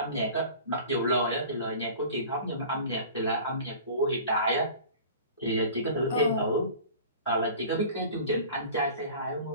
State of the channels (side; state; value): both; inverted; correlation -0.41